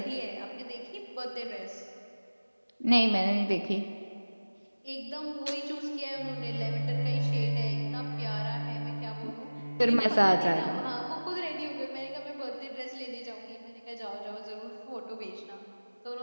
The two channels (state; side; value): inverted; both; correlation -1.00